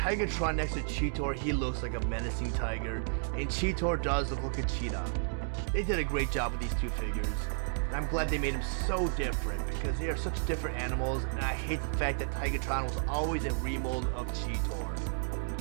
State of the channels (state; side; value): silent; left; digital silence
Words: next to Cheetor, he looks like a menacing tiger, and Cheetor does look like a cheetah. They did a great job with these two figures, and I'm glad they made them so different because they are such different animals, and I hate the fact that Tigatron was always a remold of Cheetor.